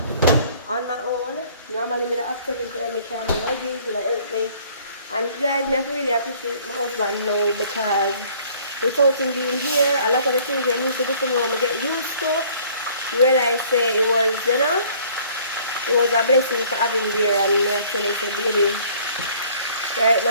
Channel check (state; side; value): inverted; both; correlation -0.56